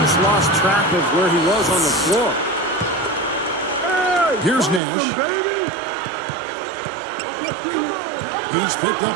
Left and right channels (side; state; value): left; drops out; at 4.8 s